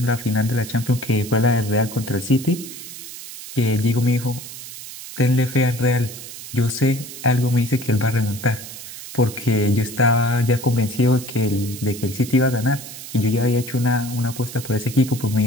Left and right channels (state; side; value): noise; right; hiss, 12 dB below the sound